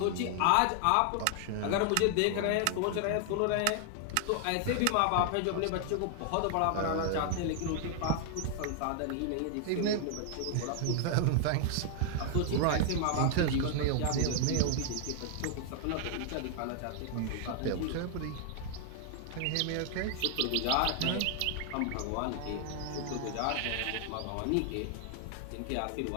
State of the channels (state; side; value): different; both; correlation 0.00